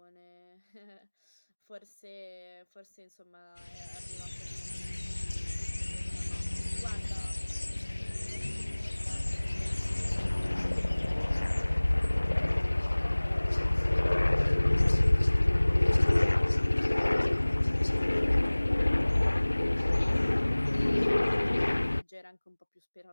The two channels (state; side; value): inverted; both; correlation -1.00